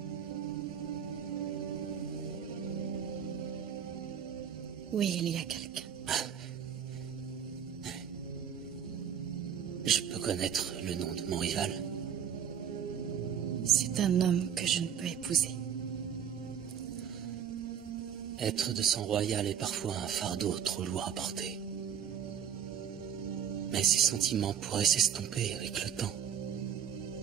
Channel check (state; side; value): quieter; left; 8.6 dB